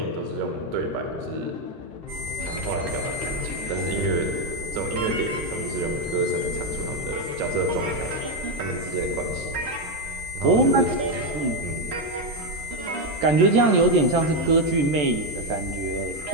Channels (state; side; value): late; left; 14 ms